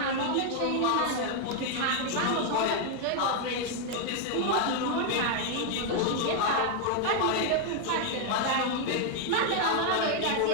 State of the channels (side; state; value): both; different; correlation 0.00